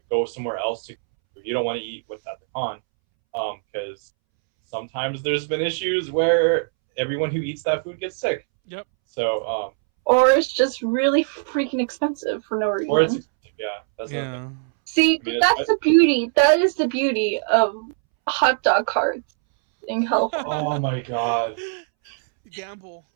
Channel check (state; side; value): silent; left; 64 dB below the other